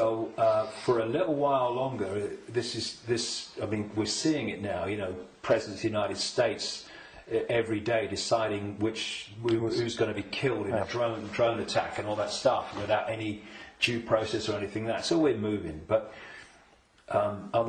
for a little while longer, I mean, we're seeing it now, you know, President of the United States every day deciding who's going to be killed in a drone attack and all that stuff without any due process or anything like that. So we're moving, but at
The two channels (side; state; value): both; identical; correlation 1.00